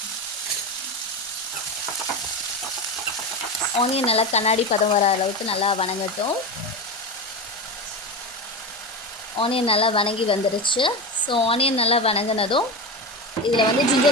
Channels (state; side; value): normal; both; correlation 0.21